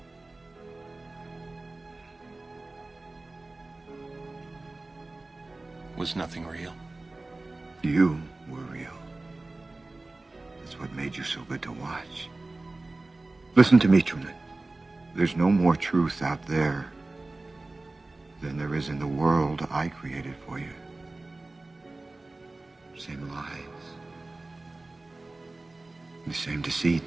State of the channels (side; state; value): left; quieter; 3.1 dB